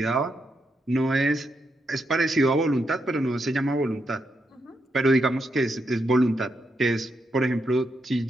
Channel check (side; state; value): both; normal; correlation 0.82